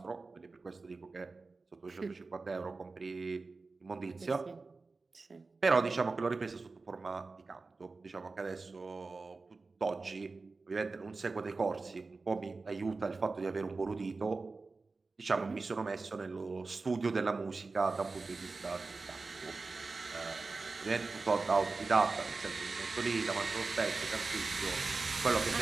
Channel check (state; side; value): quieter; left; 3.9 dB